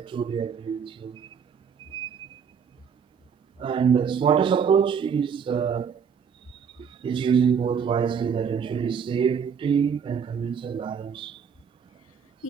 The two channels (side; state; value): left; quieter; 6.9 dB